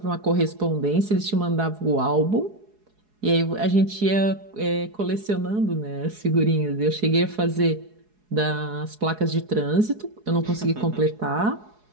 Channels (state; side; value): late; left; 4.7 ms